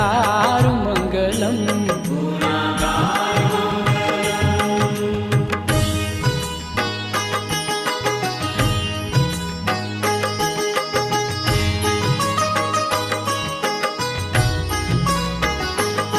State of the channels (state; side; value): identical; both; correlation 1.00